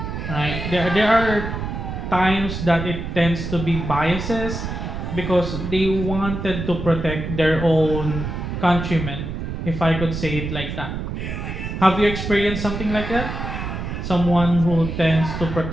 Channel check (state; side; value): noise; right; rumble, 5 dB below the sound